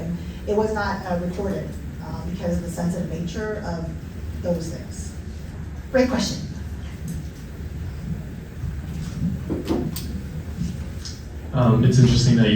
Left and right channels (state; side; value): identical; both; correlation 1.00